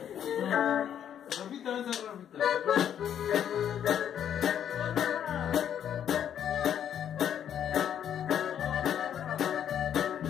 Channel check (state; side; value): quieter; right; 9.5 dB